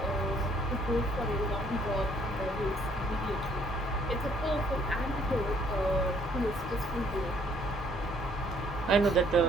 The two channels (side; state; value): both; normal; correlation 0.65